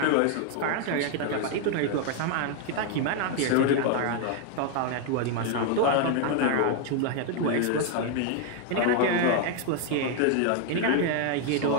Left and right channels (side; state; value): both; different; correlation 0.00